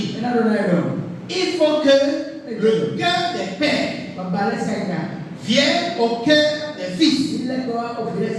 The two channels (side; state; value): both; identical; correlation 1.00